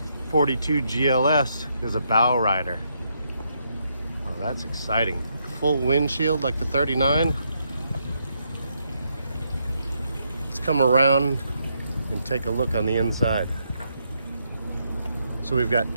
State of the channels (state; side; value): inverted; both; correlation -0.78